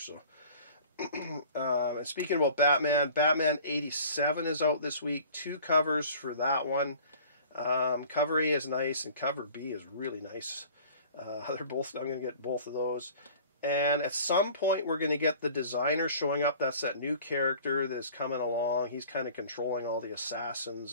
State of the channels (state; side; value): inverted; both; correlation -0.47